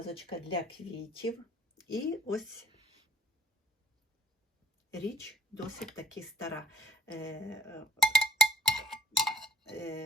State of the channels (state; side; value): normal; both; correlation 0.50